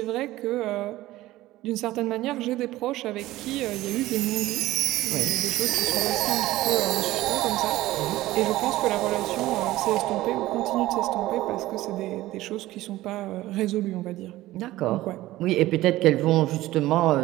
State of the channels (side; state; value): left; quieter; 16.6 dB